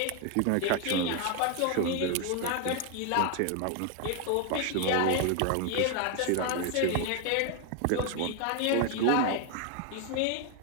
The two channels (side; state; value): both; different; correlation 0.01